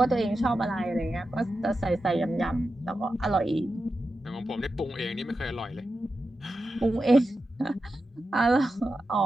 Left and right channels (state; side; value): normal; both; correlation 0.91